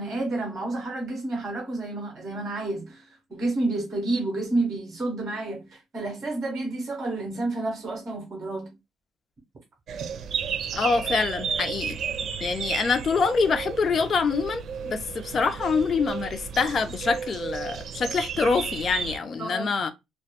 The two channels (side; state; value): both; normal; correlation 0.78